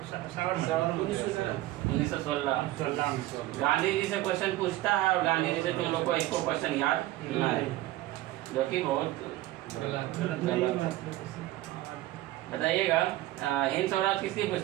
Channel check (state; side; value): quieter; left; 16.3 dB